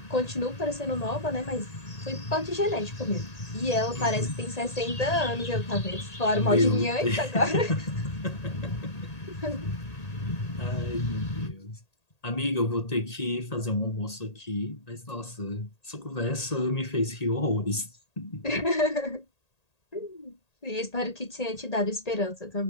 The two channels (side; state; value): right; late; 1.8 ms